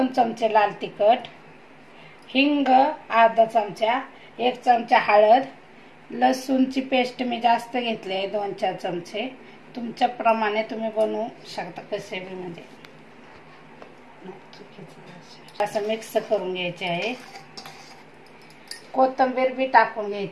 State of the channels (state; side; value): identical; both; correlation 1.00